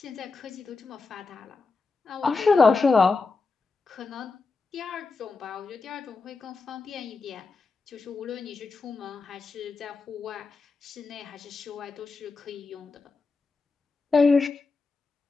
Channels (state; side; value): quieter; right; 4.2 dB